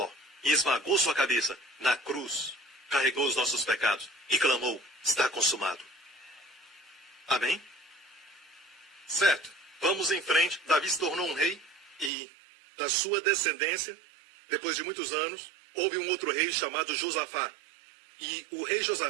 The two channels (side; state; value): left; drops out; at 12.1 s